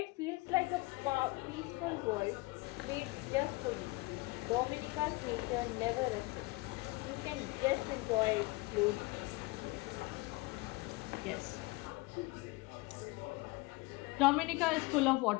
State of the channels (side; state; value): right; quieter; 23.5 dB